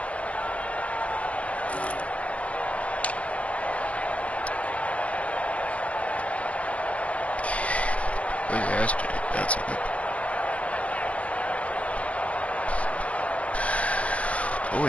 Where's Astrid? That's a good. I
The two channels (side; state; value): right; late; 0.064 ms